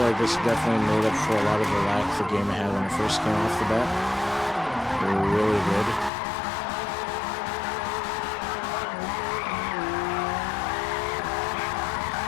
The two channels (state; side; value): drops out; right; at 6.1 s